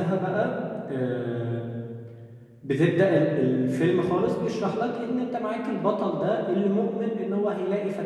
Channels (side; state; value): both; identical; correlation 1.00